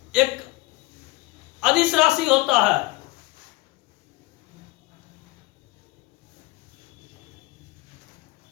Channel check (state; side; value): quieter; right; 20.5 dB